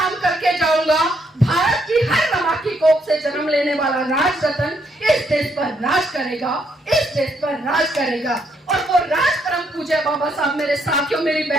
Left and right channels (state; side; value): normal; both; correlation 0.73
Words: करके जाऊंगा, भारत की हर रमा की कोख से जन्म लेने वाला राजरतन इस देश पर राज करेगा, इस देश पर राज करेगा। और वो राज परम पूज्य बाबा साहब, मेरे साथियों, मेरी